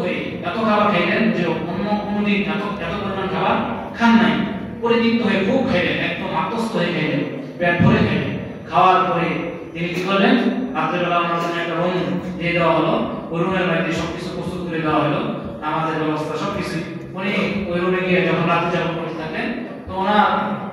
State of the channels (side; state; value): both; identical; correlation 1.00